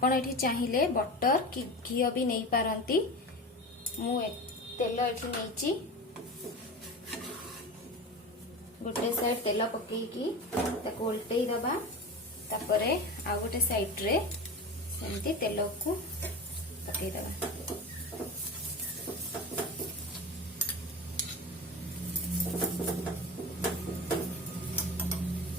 एठी चाहिए बटर कि घी भी नहीं पारंती। मु तेल एठी नैची गोटे साइड तेल पकेकी ताको उल्टई दबा तापरे आ गोटे साइड रे सेमती तेल को पकई दबा।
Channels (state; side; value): normal; both; correlation 0.29